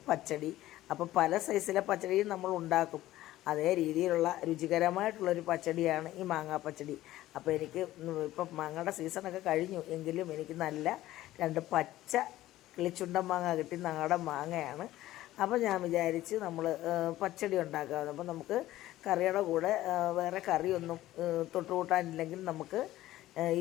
പച്ചടി. അപ്പോൾ പല സൈസിലെ പച്ചടിയും നമ്മൾ ഉണ്ടാക്കും. അതേ രീതിയിലുള്ള രുചികരമായിട്ടുള്ളൊരു പച്ചടിയാണ് ഈ മാങ്ങാ പച്ചടി. അപ്പോൾ എനിക്ക് ഇപ്പം മാങ്ങയുടെ സീസണൊക്കെ കഴിഞ്ഞു, എങ്കിലും എനിക്ക് നല്ല 2 പച്ച കിളിച്ചുണ്ടൻ മാങ്ങ കിട്ടി. നാടൻ മാങ്ങയാണ്. അപ്പോൾ ഞാൻ വിചാരിച്ച് നമ്മൾ പച്ചടി ഉണ്ടാക്കാമെന്ന്. അപ്പോൾ നമുക്ക് കറിയുടെ കൂടെ വേറെ കറിയൊന്നും തൊട്ടുകൂട്ടാനില്ലെങ്കിൽ നമുക്ക്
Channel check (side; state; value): right; quieter; 15.2 dB